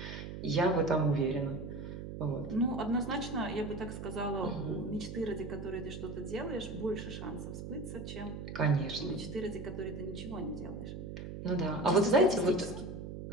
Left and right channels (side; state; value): right; noise; hum, 8 dB below the sound